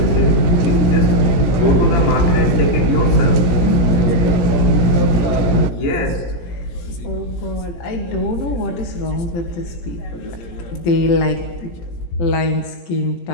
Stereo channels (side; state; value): right; late; 17 ms